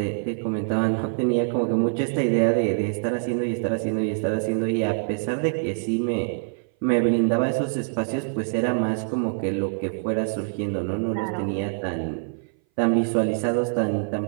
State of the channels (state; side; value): silent; left; 59 dB below the other